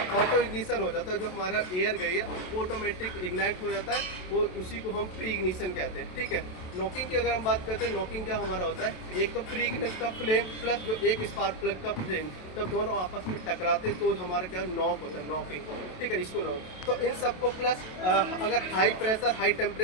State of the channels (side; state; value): right; late; 27 ms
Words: इग्निशन हो जाता है। जो हमारा एयर गई है वो ऑटोमेटिक इग्नाइट हो जाता है, वो उसी को हम प्री इग्निशन कहते हैं। ठीक है, नॉकिंग की अगर हम बात करते हैं, नॉकिंग क्या हमारा होता है, एक तो प्री इग्निशन का फ्लेम प्लस जो एक स्पार्क प्लग का फ्लेम, जब दोनों आपस में टकराते तो हमारा क्या नॉक होता है, नॉकिंग। ठीक है, इसको नॉक। तो इन सबको प्लस अगर हाई प्रेशर हाई